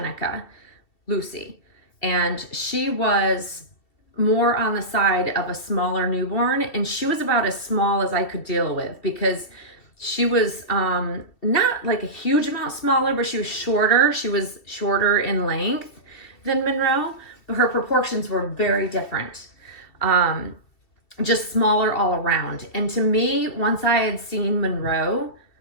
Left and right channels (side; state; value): right; late; 2.5 ms